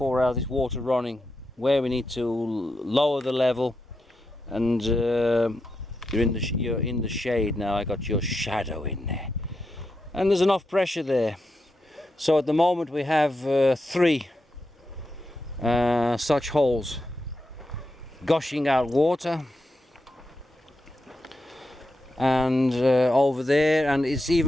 hours this water running, where we need to lower the level. And you're in the shade now. I got your shadow in there, and there's enough pressure there. So at the moment we have 3 such holes gushing out water, and over there, and it's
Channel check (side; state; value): both; normal; correlation 0.86